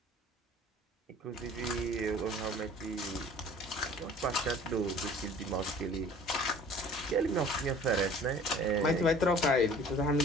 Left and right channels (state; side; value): normal; both; correlation 0.48